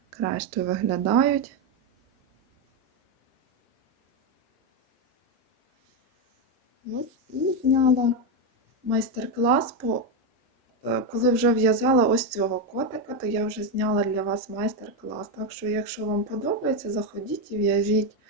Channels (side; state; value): both; normal; correlation 0.07